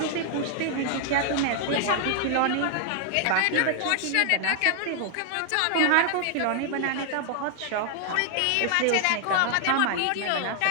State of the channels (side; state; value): both; different; correlation 0.00